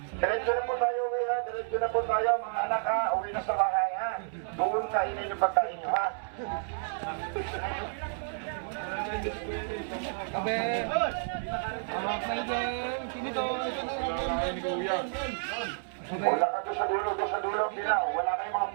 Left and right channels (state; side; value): silent; left; 57 dB below the other